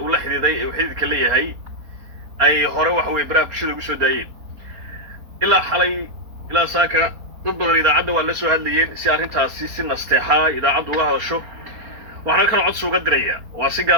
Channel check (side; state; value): left; late; 4.3 ms